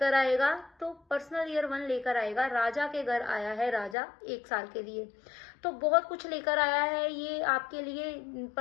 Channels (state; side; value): drops out; right; at 4.0 s